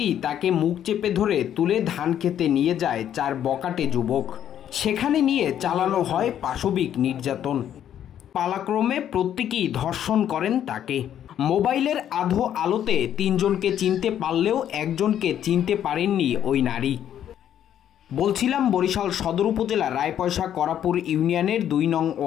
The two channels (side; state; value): right; quieter; 10.3 dB